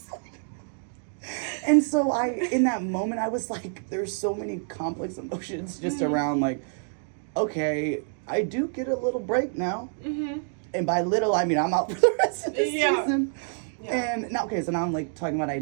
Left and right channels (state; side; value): silent; left; 60 dB below the other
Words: And so in that moment, I was like, there's so many complex emotions just around, like, okay, I do get a little break now. And by little, I mean I'm out for the rest of the season. And now, so now I'm, like, talking about